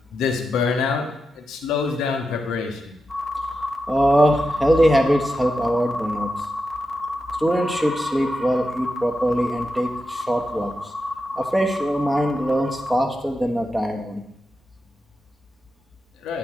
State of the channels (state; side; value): normal; both; correlation 0.89